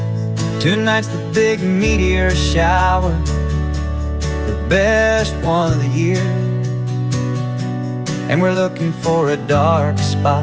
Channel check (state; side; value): identical; both; correlation 1.00